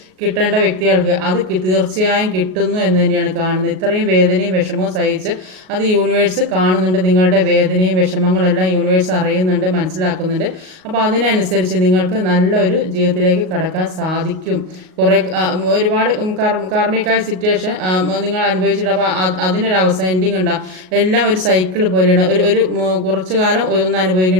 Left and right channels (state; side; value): late; left; 38 ms